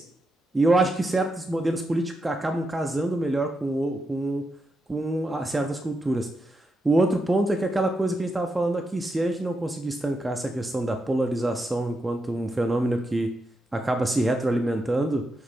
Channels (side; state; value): both; normal; correlation 0.85